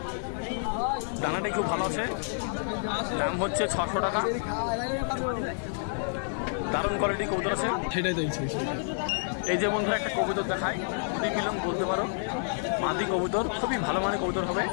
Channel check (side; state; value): right; silent; 59 dB below the other